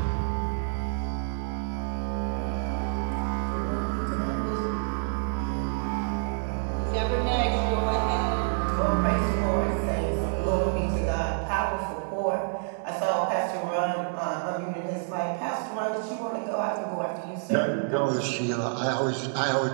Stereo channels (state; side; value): silent; left; digital silence